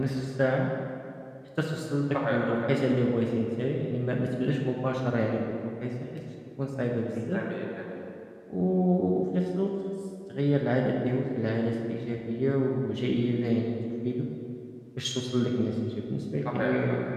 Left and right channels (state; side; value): identical; both; correlation 1.00